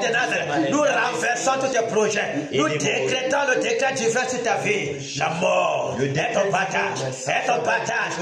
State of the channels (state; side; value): identical; both; correlation 1.00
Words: Nazareth, nous renversons tous tes projets. Nous décrétons le décret divin sur ta vie. La mort est ton partage. Est ton partage.